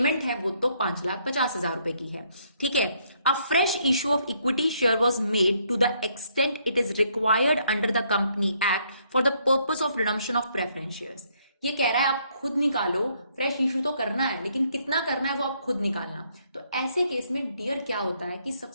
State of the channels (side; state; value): both; inverted; correlation -0.70